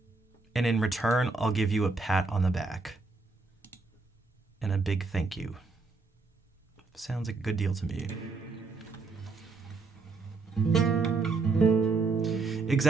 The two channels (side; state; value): left; quieter; 4.1 dB